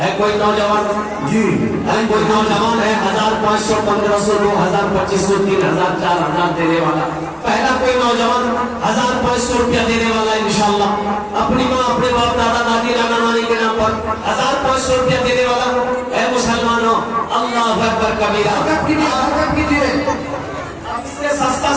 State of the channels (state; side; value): identical; both; correlation 1.00